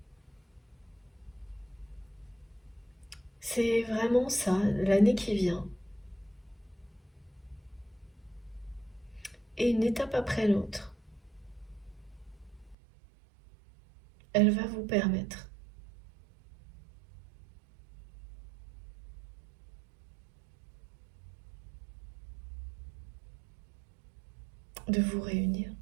C'est vraiment ça, l'année qui vient. Et une étape après l'autre, elle va vous permettre de vous réunir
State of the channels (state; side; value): drops out; left; at 12.8 s